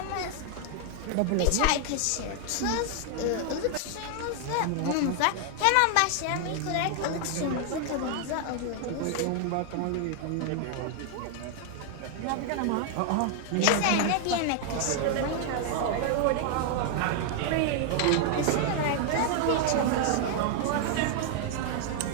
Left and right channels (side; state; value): both; different; correlation 0.00